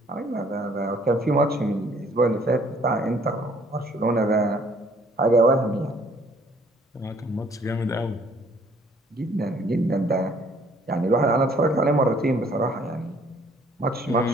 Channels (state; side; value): normal; both; correlation 0.60